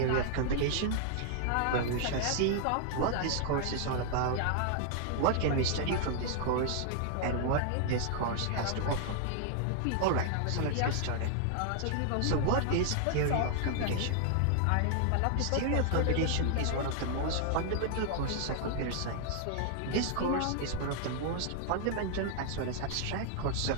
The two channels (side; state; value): both; different; correlation 0.00